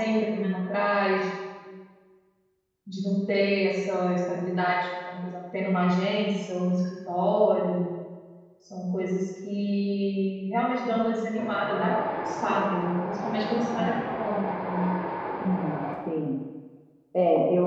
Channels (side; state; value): both; identical; correlation 1.00